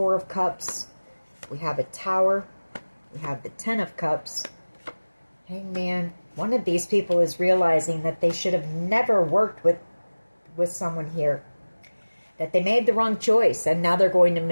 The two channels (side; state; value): both; inverted; correlation -1.00